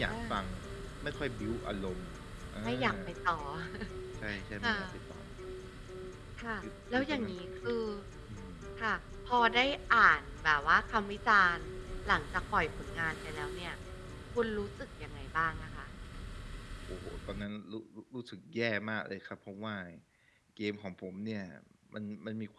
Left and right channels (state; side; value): identical; both; correlation 1.00